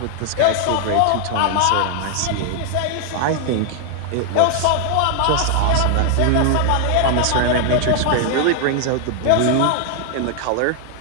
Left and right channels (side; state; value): both; different; correlation 0.00